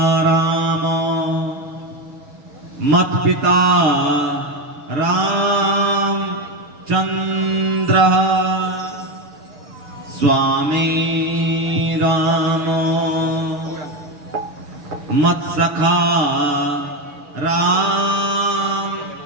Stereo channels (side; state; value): left; late; 6.6 ms